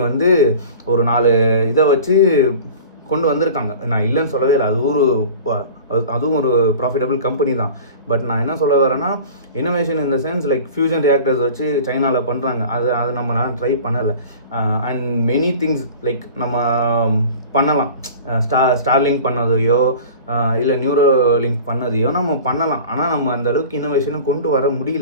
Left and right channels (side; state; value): both; inverted; correlation -0.40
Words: வந்து ஒரு 4 இதை வச்சு கொண்டு வந்திருக்காங்க. நான் இல்லைன்னு சொல்லவே இல்லை. அதுவும் ஒரு ப்ராஃபிட்டபிள் கம்பெனி தான். பட் நான் என்ன சொல்ல வரேன்னா, innovation in the sense like fusion reactors வச்சு சைனாவில் பண்ணுறாங்க. அது நம்ம ட்ரை பண்ணலை. அண்ட் மெனி திங்ஸ் லைக் நம்ம பண்ணலாம். ஸ்டார்லிங்க் பண்ணதையோ இல்லை நியூரோலிங்க் பண்ணதையோ நம்ம பண்ணலாம். ஆனால் நம்ம அந்த அளவுக்கு இன்னோவேஷனை கொண்டு வர